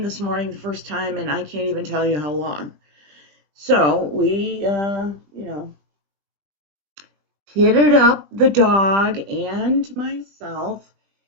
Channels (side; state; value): left; late; 20 ms